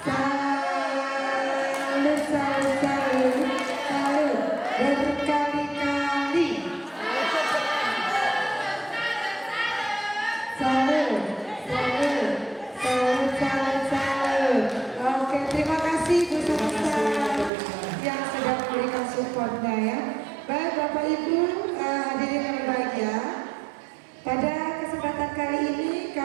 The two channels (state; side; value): drops out; left; at 17.5 s